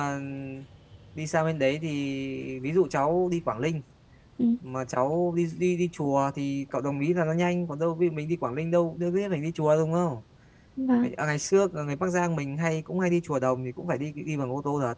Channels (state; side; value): identical; both; correlation 1.00